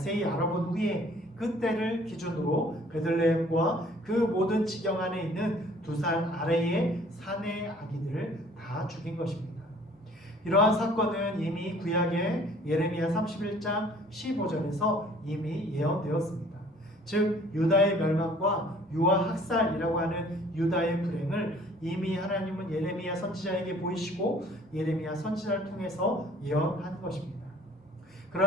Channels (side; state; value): both; normal; correlation 0.54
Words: 알아본 후에 그 때를 기준으로 베들레헴과 그 모든 지경 안에 있는 2살 아래의 사내 아기들을 다 죽인 것입니다. 이러한 사건은 이미 구약의 예레미야 31장 15절에서 이미 예언되었습니다. 즉 유다의 멸망과 유아 학살이라고 하는 유다의 불행을 이미 하나님은 예레미야 선지자에게 보이시고 예레미야 선지자를 통해서 예언한 것입니다.